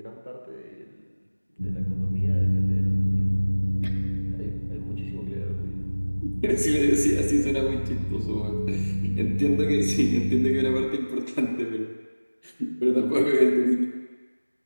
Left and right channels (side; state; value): both; inverted; correlation -1.00